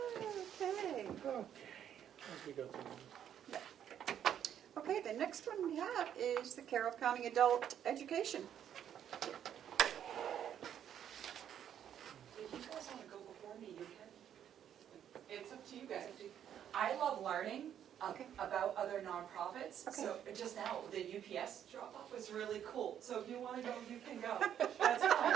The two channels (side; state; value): left; quieter; 9.7 dB